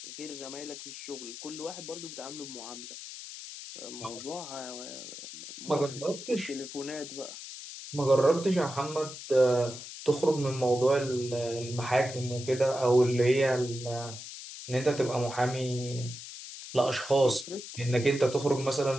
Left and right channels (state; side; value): noise; left; hiss, 11 dB below the sound